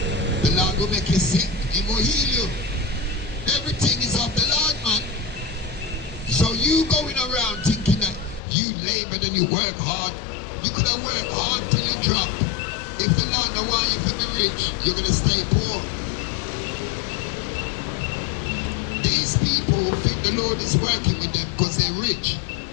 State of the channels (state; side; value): drops out; right; at 8.4 s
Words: The Lord will make you sick, He will heal you. Everything is of the Lord, man. So you going around thinking that you labored and you work hard. You could have worked hard till you drop. If the Lord don't want you to be rich, you're going to stay poor. These people think the Lord is working with them because they're rich.